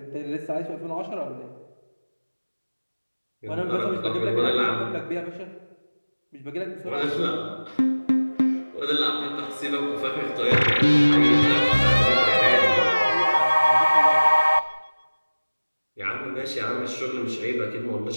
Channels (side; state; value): both; inverted; correlation -1.00